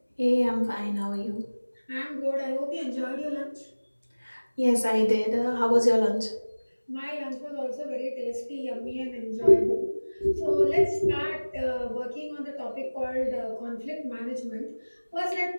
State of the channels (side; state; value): both; inverted; correlation -1.00